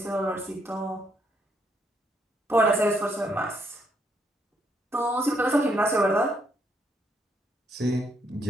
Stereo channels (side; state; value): both; normal; correlation 0.74